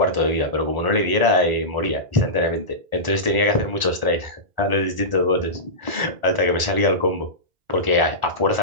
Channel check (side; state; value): left; late; 1.4 ms